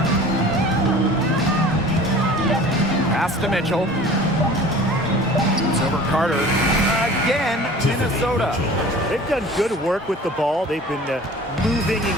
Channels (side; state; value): both; normal; correlation 0.44